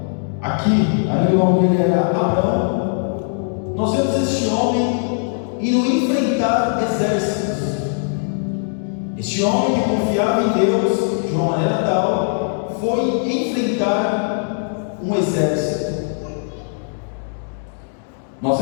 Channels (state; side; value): silent; right; digital silence